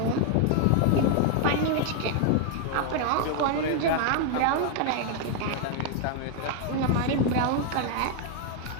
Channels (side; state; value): both; different; correlation 0.00